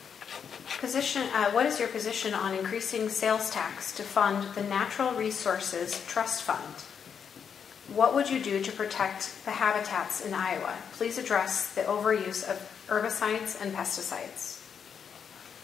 What is your position on increasing sales tax to fund the Natural Resources Trust Fund? What would you do to protect the habitats in Iowa? Please address the overuse of herbicides and pesticides.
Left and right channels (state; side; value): quieter; right; 7.2 dB